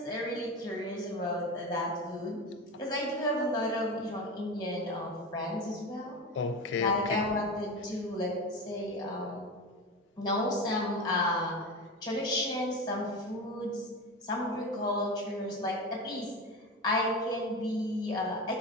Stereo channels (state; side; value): normal; both; correlation 0.24